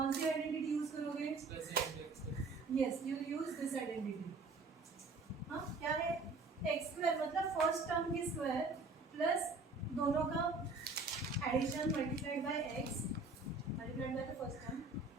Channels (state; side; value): quieter; left; 3.7 dB